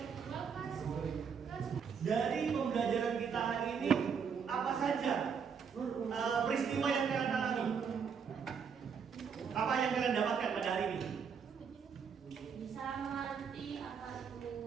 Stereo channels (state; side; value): quieter; left; 6.5 dB